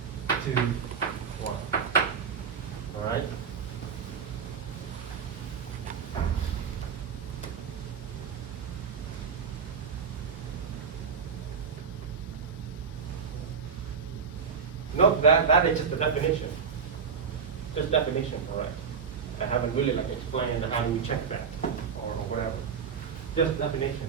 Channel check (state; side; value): quieter; left; 6.2 dB